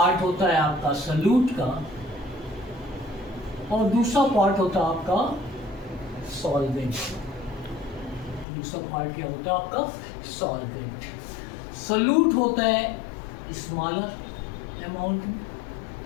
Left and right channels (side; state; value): right; drops out; at 8.5 s